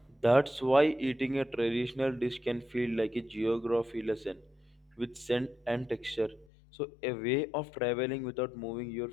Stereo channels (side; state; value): right; drops out; at 6.5 s